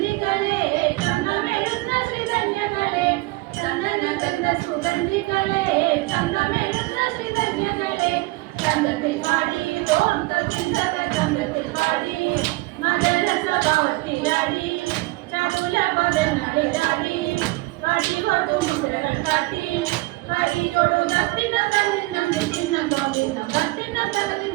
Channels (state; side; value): quieter; left; 22.0 dB